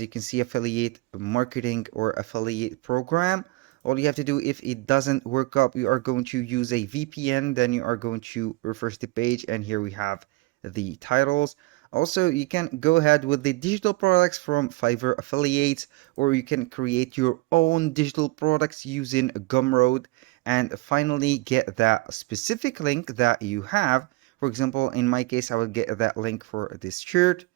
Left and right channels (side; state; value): left; quieter; 21.2 dB